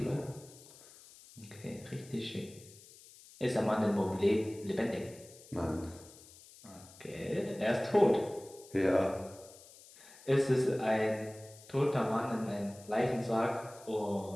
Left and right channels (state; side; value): noise; left; hiss, 21 dB below the sound